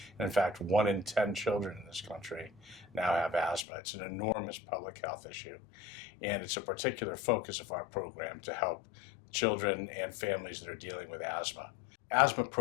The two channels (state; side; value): drops out; right; at 3.7 s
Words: And in fact, 1 in 10 children in this country now have asthma. It's an enormous public health issue. And it's a particular focus of our program to help children and families that are dealing with asthma. Asthma